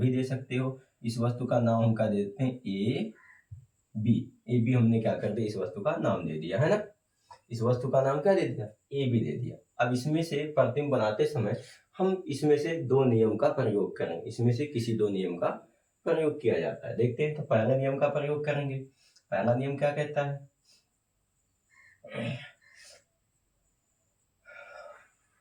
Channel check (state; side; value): identical; both; correlation 1.00